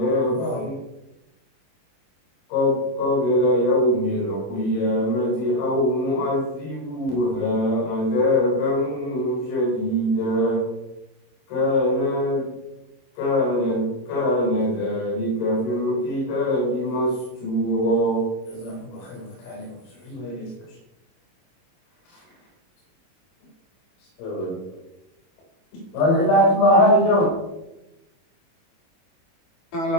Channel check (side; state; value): right; late; 22 ms